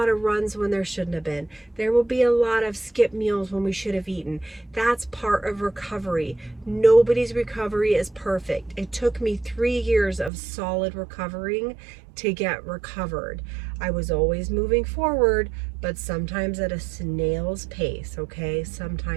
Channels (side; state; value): left; drops out; at 10.3 s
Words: of runs when there shouldn't have been. There will be a lot of skip meals when we should have eaten. That's part of recovery. Nobody's recovery is perfect. It took me 3 years of solid recovering to get recovered. I was always moving forward, but sometimes at a snail's pace, okay?